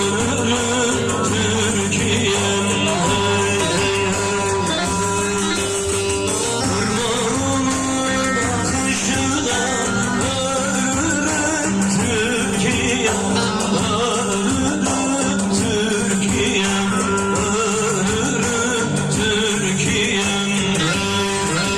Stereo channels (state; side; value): identical; both; correlation 1.00